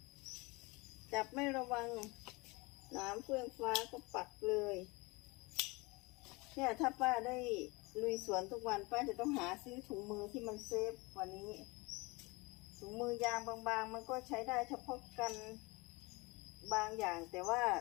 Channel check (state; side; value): quieter; right; 25.4 dB